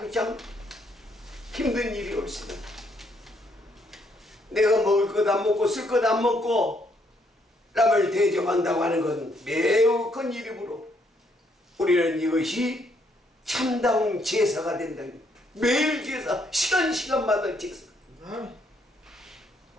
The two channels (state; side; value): normal; both; correlation 0.71